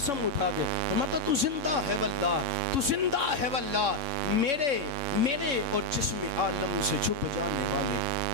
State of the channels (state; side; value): late; left; 3.6 ms